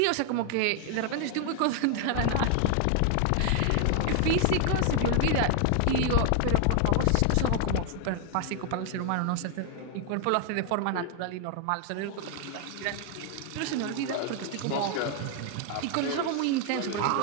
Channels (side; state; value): both; different; correlation 0.00